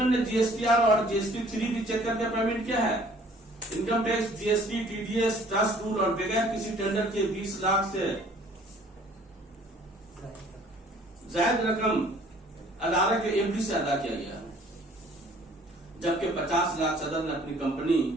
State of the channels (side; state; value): both; normal; correlation 0.55